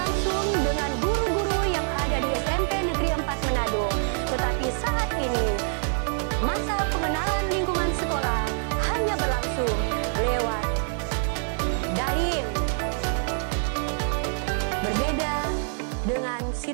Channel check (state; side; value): silent; left; 61 dB below the other